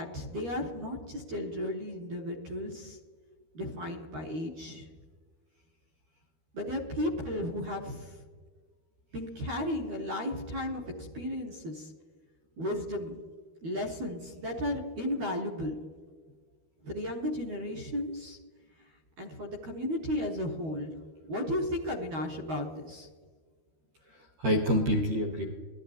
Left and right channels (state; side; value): late; left; 13 ms